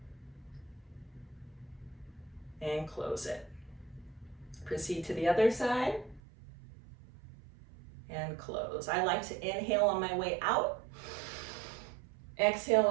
And close it. Proceed to the other side. And close. I like to inhale on my way out, exhale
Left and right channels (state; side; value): drops out; left; at 6.2 s